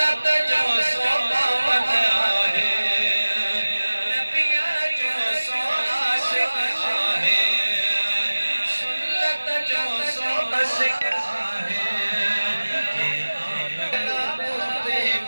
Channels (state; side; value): inverted; both; correlation -1.00